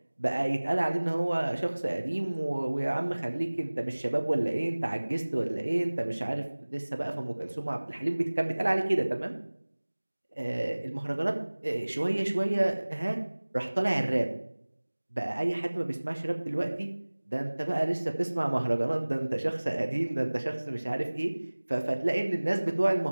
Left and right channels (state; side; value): inverted; both; correlation -1.00